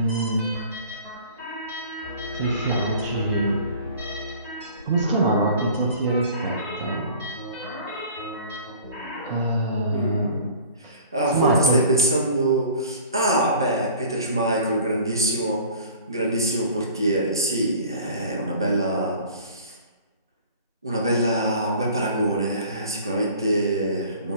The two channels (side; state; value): both; inverted; correlation -0.46